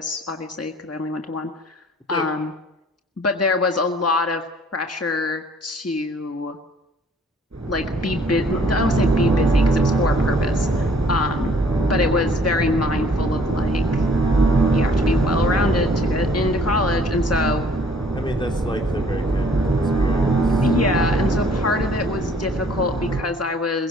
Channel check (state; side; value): normal; both; correlation 0.58